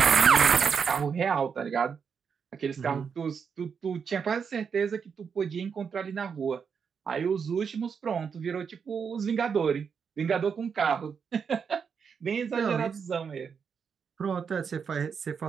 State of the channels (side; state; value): left; quieter; 6.4 dB